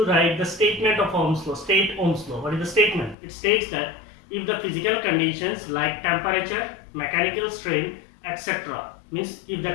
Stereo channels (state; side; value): drops out; right; at 3.2 s